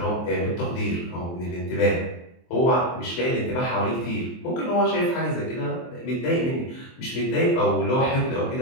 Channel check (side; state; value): right; late; 23 ms